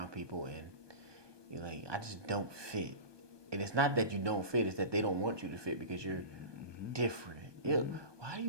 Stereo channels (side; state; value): left; late; 1.2 ms